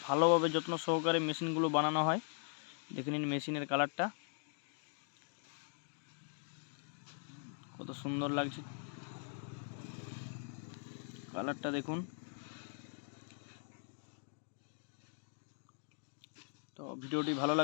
ভালোভাবে যত্ন সহকারে মেশিনগুলো বানানো হয়। দেখে নিন মেশিনের কালারটা কত সুন্দর লাগছে, কালারটা দেখুন। তো ভিডিওটি ভালো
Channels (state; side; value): silent; right; 51 dB below the other